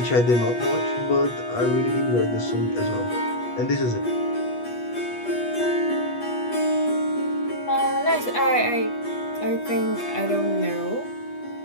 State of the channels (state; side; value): late; right; 8.3 ms